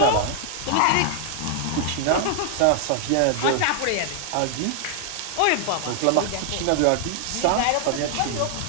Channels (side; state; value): both; different; correlation 0.00